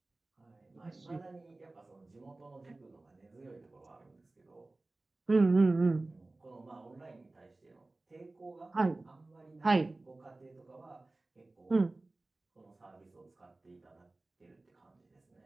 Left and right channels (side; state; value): left; quieter; 3.0 dB